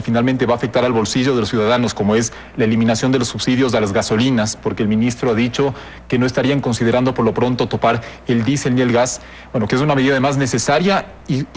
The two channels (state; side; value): identical; both; correlation 1.00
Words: finalmente va a afectar al bolsillo de los ciudadanos, como es la eliminación de los subsidios a las gasolinas, porque el ministro ha dicho que no estarían considerando por lo pronto topar el diésel ni el gas, bueno, que es una medida además necesaria